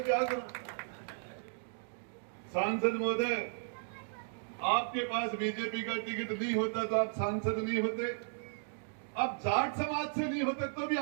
क्या करूं? सांसद महोदय, आपके पास बीजेपी का टिकट नहीं होता तो आप सांसद नहीं होते। आप जाट समाज से नहीं होते तो भी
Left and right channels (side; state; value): left; silent; digital silence